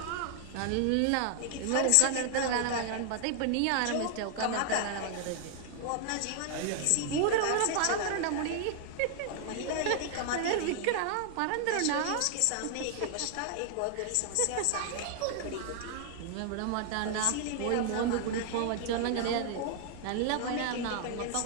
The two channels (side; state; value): both; different; correlation 0.00